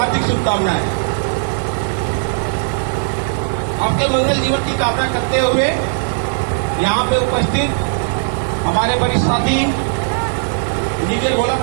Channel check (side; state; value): left; silent; digital silence